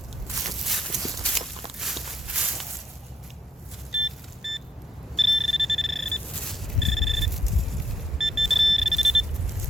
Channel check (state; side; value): normal; both; correlation 0.73